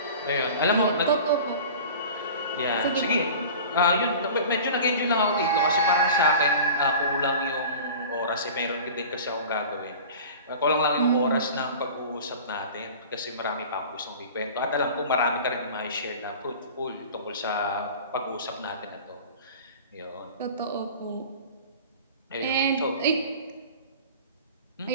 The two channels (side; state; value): both; inverted; correlation -0.39